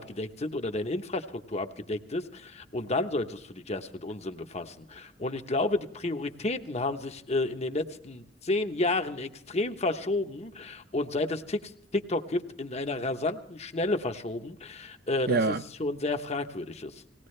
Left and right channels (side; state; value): both; normal; correlation 0.35